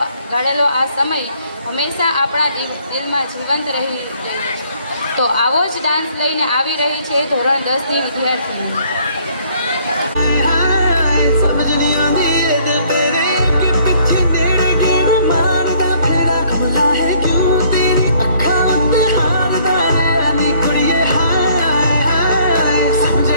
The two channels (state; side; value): inverted; both; correlation -0.61